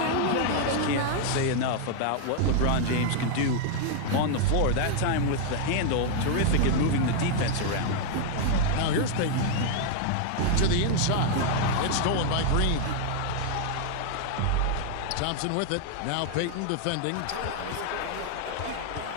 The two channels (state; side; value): different; both; correlation 0.00